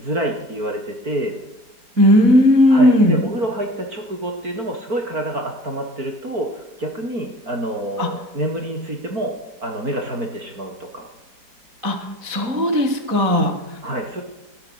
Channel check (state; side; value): late; left; 4.1 ms